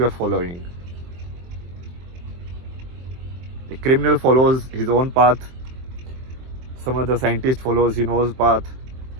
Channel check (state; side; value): late; left; 23 ms